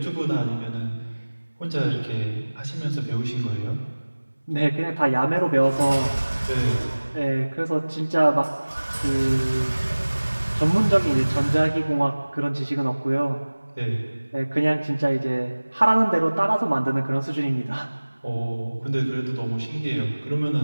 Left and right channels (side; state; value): both; inverted; correlation -1.00